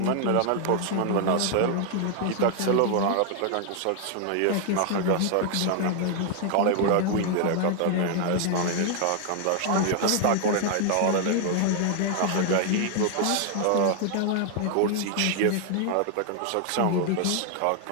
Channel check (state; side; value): different; both; correlation 0.00